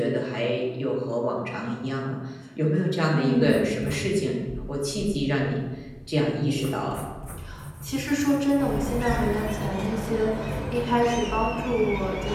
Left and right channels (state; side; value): identical; both; correlation 1.00